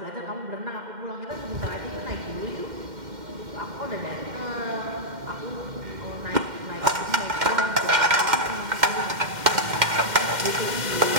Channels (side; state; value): left; late; 2.1 ms